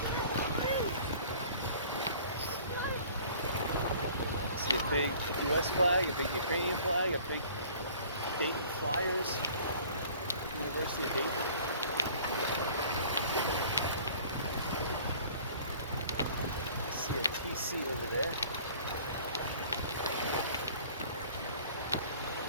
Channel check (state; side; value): inverted; both; correlation -0.50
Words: See a big US flag, a big Ukrainian flag, a big Dayton Flyers, University of Dayton. See a TC over there.